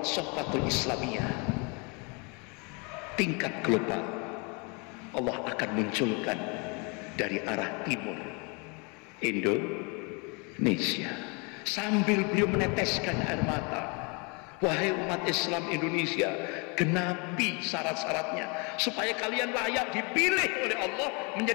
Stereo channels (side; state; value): right; quieter; 32.1 dB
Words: Sofatul Islamiyah tingkat global. Allah akan munculkan dari arah timur Indonesia, sambil beliau meneteskan air mata. Wahai umat Islam Indonesia, genapi syarat-syaratnya supaya kalian layak dipilih oleh Allah